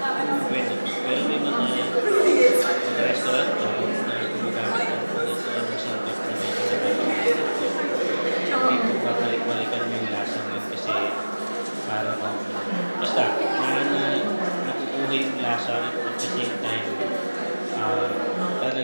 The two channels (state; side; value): inverted; both; correlation -1.00